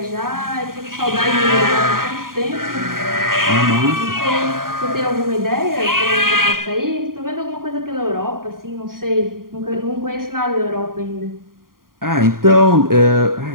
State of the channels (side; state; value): left; late; 0.91 ms